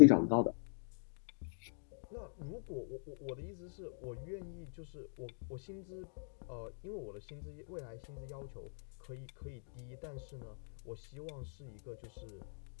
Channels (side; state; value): right; silent; digital silence